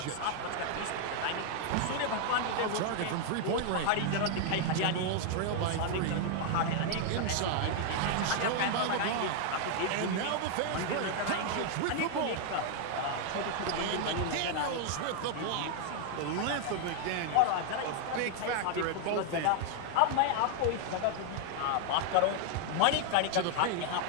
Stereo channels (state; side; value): different; both; correlation 0.00